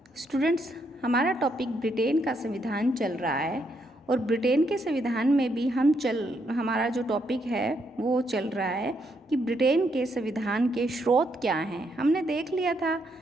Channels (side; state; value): both; normal; correlation 0.76